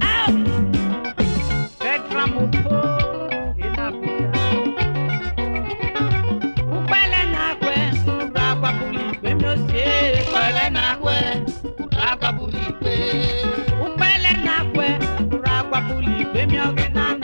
Petra Mupo Inabuja Upele nakwe Ragwa buli gbe mi ose Upele nakwe Ragwa buli gbe Upele nakwe Ragwa buli gbe mi ogena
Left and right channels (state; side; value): inverted; both; correlation -1.00